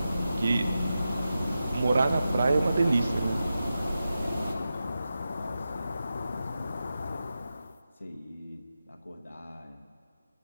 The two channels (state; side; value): inverted; both; correlation -0.91